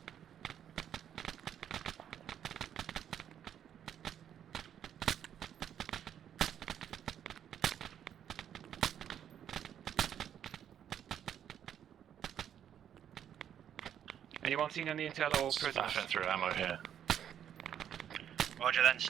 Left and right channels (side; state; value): left; quieter; 9.6 dB